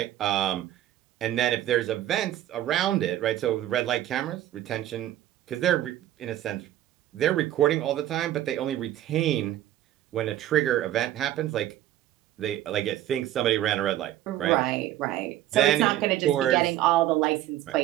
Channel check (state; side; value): quieter; left; 13.2 dB